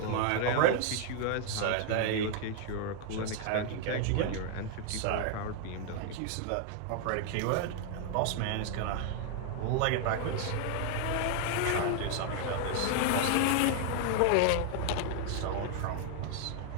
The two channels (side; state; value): both; different; correlation 0.00